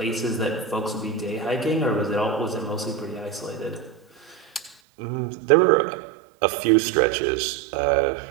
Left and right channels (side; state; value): left; drops out; at 4.8 s